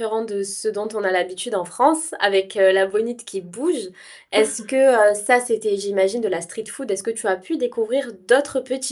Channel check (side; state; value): both; identical; correlation 1.00